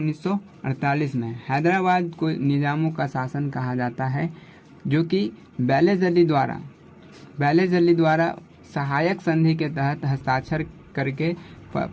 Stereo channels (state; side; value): identical; both; correlation 1.00